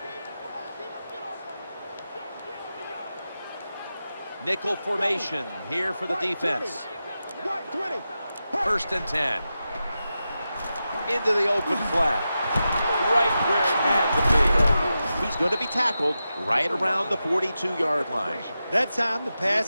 Nickel formation here for the defense. 1st and 10. Into the open flat. Right where it had to be. He's going to be tackled right around the 42-yard line. That time the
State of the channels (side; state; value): both; inverted; correlation -0.91